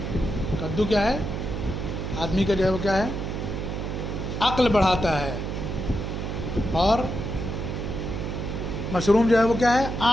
کدو کیا ہے؟ آدمی کا جو ہے وہ کیا ہے، عقل بڑھاتا ہے. اور مشروم جو ہے وہ کیا ہے،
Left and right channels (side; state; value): right; noise; hum, 4 dB below the sound